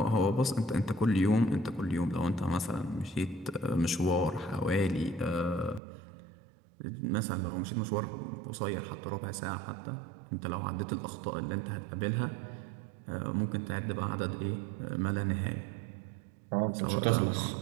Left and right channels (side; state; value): left; drops out; at 5.8 s